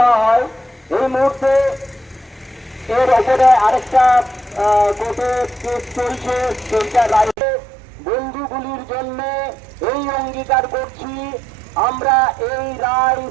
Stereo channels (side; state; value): left; drops out; at 7.4 s